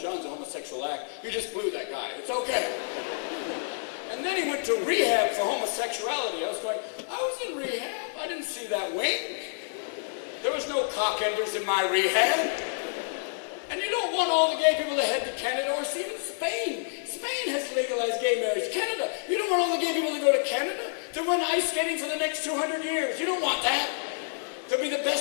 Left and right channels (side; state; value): right; silent; digital silence